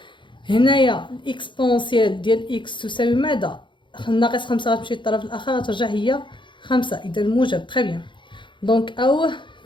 هنايا الاكسبونسيال ديال اكس تساوي ماذا؟ ناقص 5 غتمشي للطرف الاخر غترجع هي 5، اذا موجب. تري بيان. دونك او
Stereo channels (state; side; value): late; right; 0.23 ms